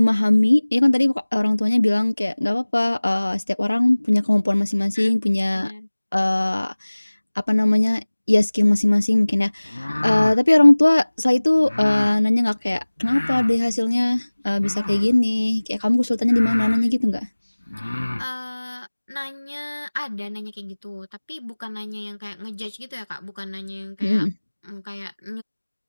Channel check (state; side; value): inverted; both; correlation -1.00